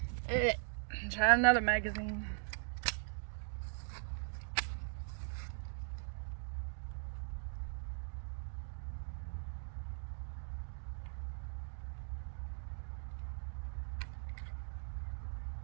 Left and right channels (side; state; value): left; silent; digital silence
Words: Alright, try another magazine.